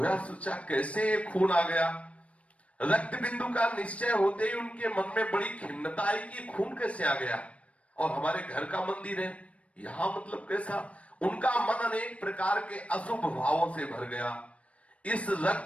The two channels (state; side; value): late; right; 0.064 ms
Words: सोचा कैसे ये खून आ गया। रक्त बिंदु का निश्चय होते ही उनके मन में बड़ी खिन्नता आई कि खून कैसे आ गया और हमारे घर का मंदिर है, यहां मतलब कैसा। उनका मन अनेक प्रकार के अशुभ भावों से भर गया। इस